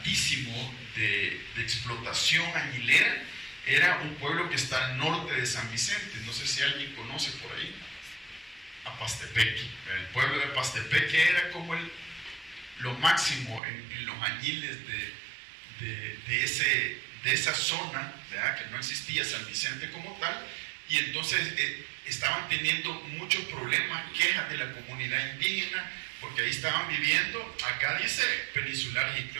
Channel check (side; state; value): left; drops out; at 13.6 s